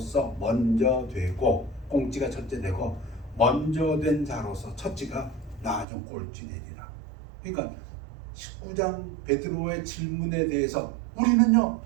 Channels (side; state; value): left; drops out; at 5.9 s